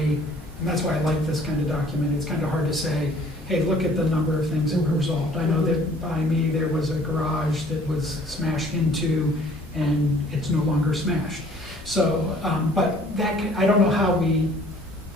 and that's why I like this kind of document, it's kind of hard to say, hey, look at the number of things that were resolved. I know that by me, there was a garage that was smashed into, and it's no longer smashed. So, but I don't know how we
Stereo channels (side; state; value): both; normal; correlation 0.55